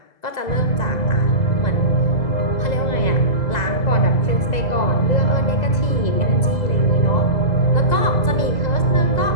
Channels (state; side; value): late; right; 2.0 ms